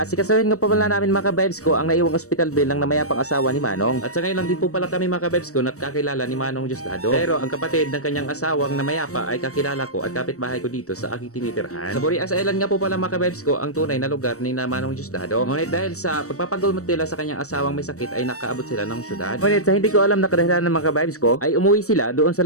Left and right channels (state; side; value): late; right; 0.65 ms